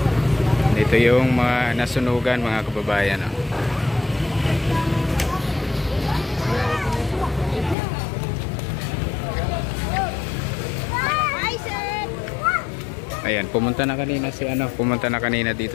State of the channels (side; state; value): right; drops out; at 7.8 s